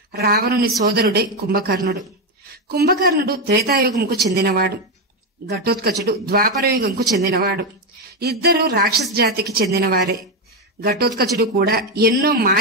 రావణుని సోదరుడే కుంభకర్ణుడు. కుంభకర్ణుడు త్రేతాయుగంకు చెందినవాడు. ఘటోత్కచుడు ద్వాపరయుగంకు చెందినవాడు. ఇద్దరు రాక్షస జాతికి చెందినవారే. ఘటోత్కచుడు కూడా ఎన్నో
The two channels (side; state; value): both; normal; correlation 0.08